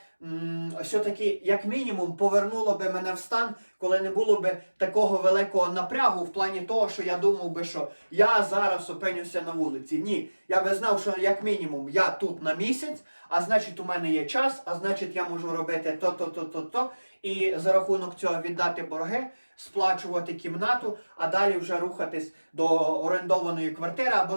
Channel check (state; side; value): inverted; both; correlation -1.00